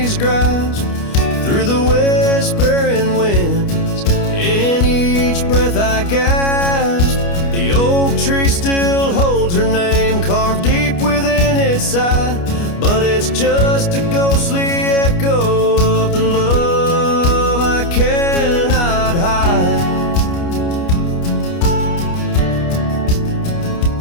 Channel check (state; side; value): late; right; 29 ms